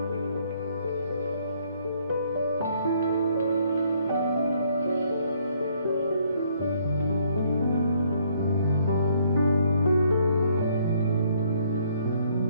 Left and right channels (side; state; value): both; inverted; correlation -0.66